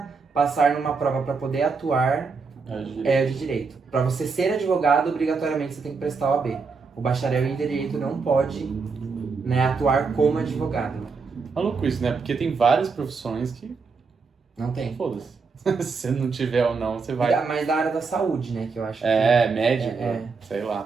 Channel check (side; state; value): left; quieter; 4.8 dB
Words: passar numa prova para poder atuar é o de direito. Para você ser advogado, obrigatoriamente você tem que prestar o OAB. O bacharel em direito não pode, né, atuar como advogado. Maluco isso, né? Porque tem várias profissões que... Não tem. Foda-se. Se você não tiver ou não, você vai... Mas da área da saúde, né, que eu acho médico, sei